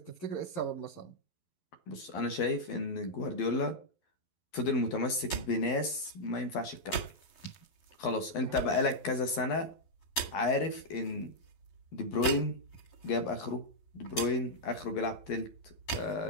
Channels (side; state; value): right; late; 11 ms